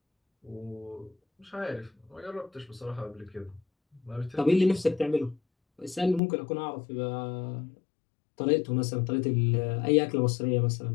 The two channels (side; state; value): right; drops out; at 6.2 s